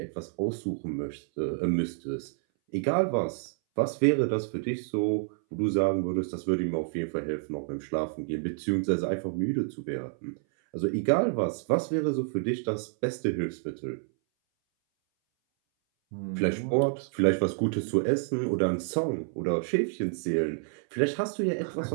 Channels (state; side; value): silent; left; 59 dB below the other